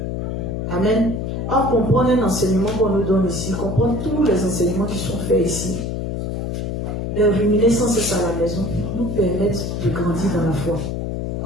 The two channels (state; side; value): noise; left; hum, 3 dB below the sound